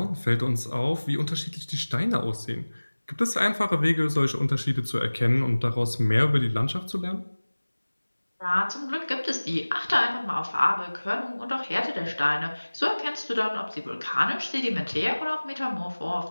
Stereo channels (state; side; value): inverted; both; correlation -1.00